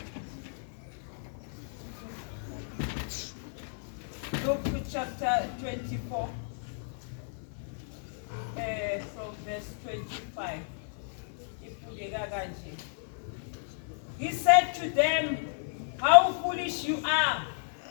Luke chapter 24, from verse 25. He said to them, "How foolish you are!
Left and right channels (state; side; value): silent; right; 56 dB below the other